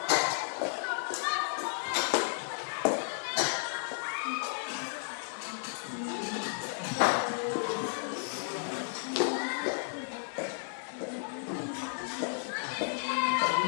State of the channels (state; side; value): silent; right; 56 dB below the other